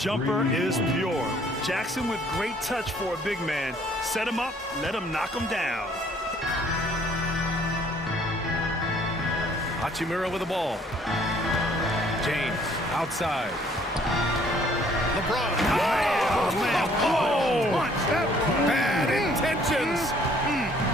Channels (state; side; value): normal; both; correlation 0.61